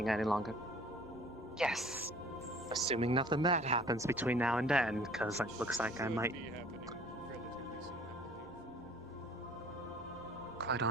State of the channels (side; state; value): both; normal; correlation 0.51